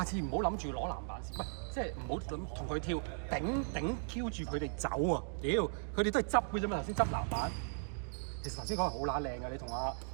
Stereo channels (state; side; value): silent; left; digital silence